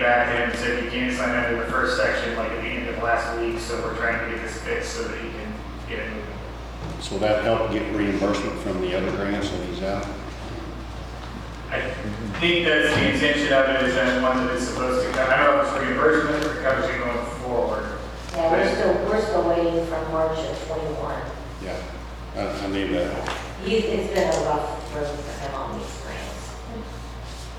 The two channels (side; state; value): both; identical; correlation 1.00